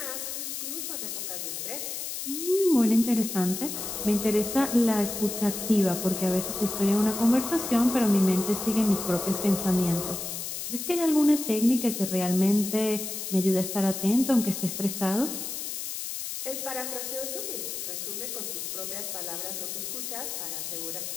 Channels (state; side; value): noise; left; hiss, 5 dB below the sound